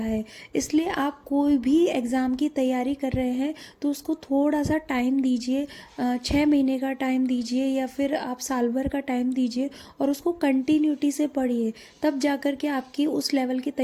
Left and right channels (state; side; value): identical; both; correlation 1.00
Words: इसलिए आप कोई भी एग्ज़ाम की तैयारी कर रहे हैं तो उसको थोड़ा सा टाइम दीजिए, 6 महीने का टाइम दीजिए या फिर आप साल भर का टाइम दीजिए और उसको कंटिन्यूटी से पढ़िए, तब जाकर के आपकी उस लेवल की